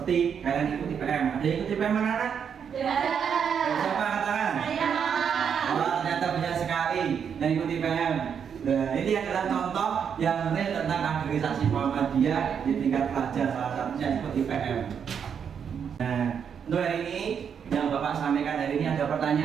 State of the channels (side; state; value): left; quieter; 7.4 dB